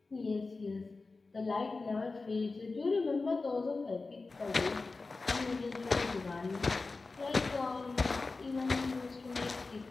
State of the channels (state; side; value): quieter; right; 3.8 dB